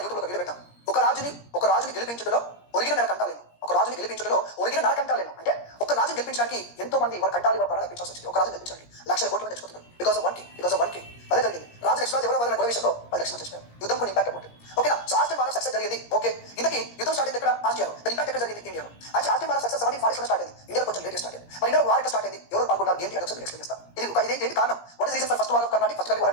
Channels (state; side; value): late; right; 17 ms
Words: యూట్యూబ్లో వీడియో పెట్టాం. ఒక రాజుని గెలిపించుటలో ఒరిగిన నరకంటాలేను. ఒక రాజుని గెలిపించుటలో ఒరిగిన నరకంటాలేను. అంటే ఒక రాజుని గెలిపించడానికి ఎంతో మంది వాళ్ళ కంటాలి వాళ్ళ ప్రాణాలు అర్పించాల్సి వచ్చింది. ఒక రాజుని గెలిపించడానికి లక్షల కోట్ల మంది చచ్చిపోతున్నారు. Because of one king. అదే జరిగింది. రాజు నెక్స్ట్ రాజు ఎవరో వాళ్ళ గొడవ విషయంలో 10 లక్షల మంది చచ్చిపోయారు. యుద్ధం కొన్ని ఇంపాక్ట్ ఉంటుంది. ఓకేనా? So Austrian war of success జరిగింది. ఓకే, ఇంతకీ యుద్ధం స్టార్ట్ అయింది ఎక్కడ? ఆస్ట్రియాలో. దాని ఇంపాక్ట్ ఎక్కడ జరిగింది? ఇండియాలో. అయితే Austrian war of success 1740 start అయింది. ఇండియాలో కొంచెం లేట్ స్టార్ట్ అయింది. మరి ఇండియాలో వార్ ఎక్కడ స్టార్ట్ అయింది? ఎవరు పాల్గొన్నారు? ఏంటి అని ఒకసారి ఎక్స్ప్లెయిన్ చేస్తా. ఇది కారణం. What is reason for first war of Carnatic? First war